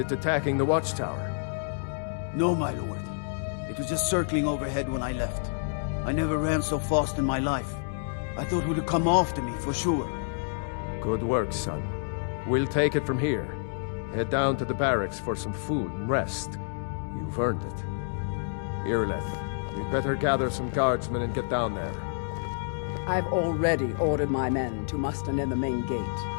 attacking the Watchtower? No, my lord. It was just circling overhead when I left. I never ran so fast in my life. I thought it would come after me, for sure. Good work, son. We'll take it from here. Head down to the barracks for some food and rest. You've earned it. Irileth, you'd better gather some guardsmen and get down there. I've already ordered my men to muster near the main gate.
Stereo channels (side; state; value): right; silent; digital silence